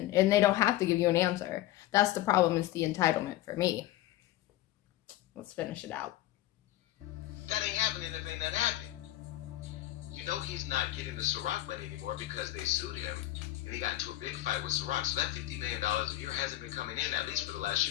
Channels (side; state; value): right; quieter; 15.2 dB